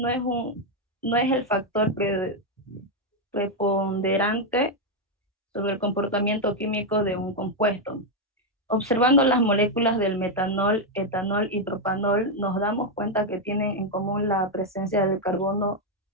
es el factor preponderante sobre el comportamiento químico de un compuesto. Observando las moléculas del metanol, etanol y propanol, nos damos cuenta que tienen en común la presencia del carbono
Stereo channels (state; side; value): normal; both; correlation 0.02